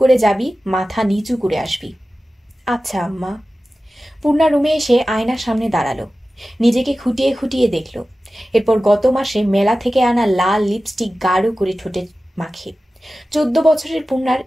করে যাবি, মাথা নিচু করে আসবি। আচ্ছা আম্মা। পূর্ণা রুমে এসে আয়নার সামনে দাঁড়ালো। নিজেকে খুঁটিয়ে খুঁটিয়ে দেখল। এরপর গত মাসে মেলা থেকে আনা লাল লিপস্টিক গাঢ় করে ঠোঁটে মাখে। 14 বছরের পূর্ণার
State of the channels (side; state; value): both; normal; correlation 0.95